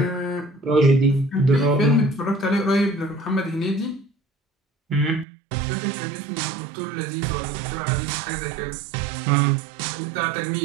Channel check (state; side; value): drops out; left; at 5.2 s